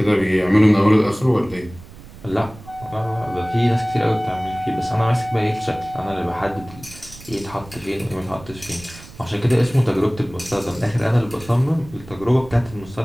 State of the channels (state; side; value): noise; right; rumble, 18 dB below the sound